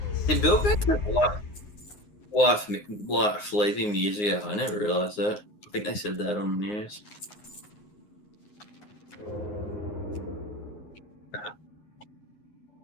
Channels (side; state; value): right; late; 9.6 ms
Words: Did Bill get wife leaving years ago? I never realised that. I think they said that on the news.